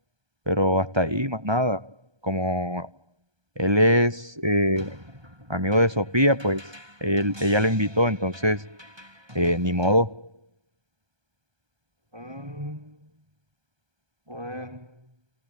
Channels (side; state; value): left; late; 1.2 ms